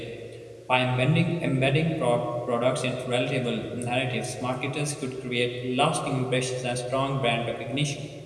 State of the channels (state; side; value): identical; both; correlation 1.00